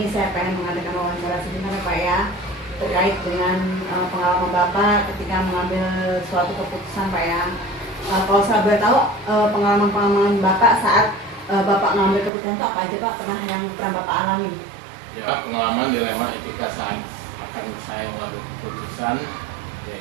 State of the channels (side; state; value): left; drops out; at 12.3 s